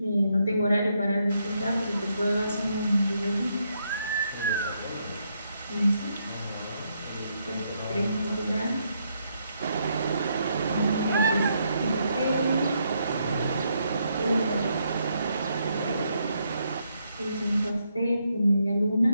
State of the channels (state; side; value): inverted; both; correlation -0.77